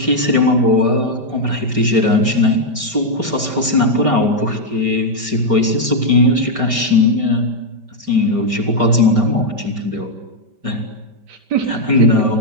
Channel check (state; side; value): late; left; 5.1 ms